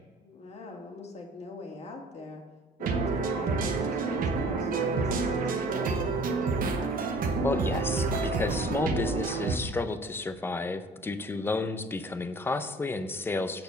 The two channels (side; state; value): both; normal; correlation 0.50